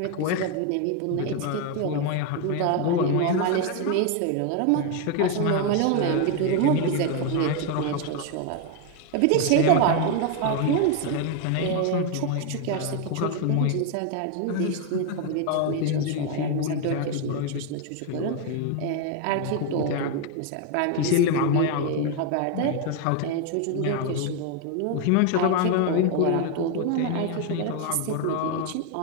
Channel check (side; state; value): both; different; correlation 0.01